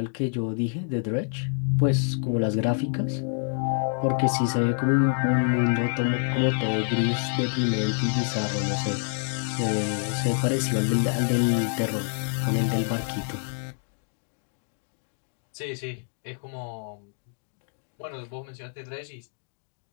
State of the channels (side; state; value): right; silent; 60 dB below the other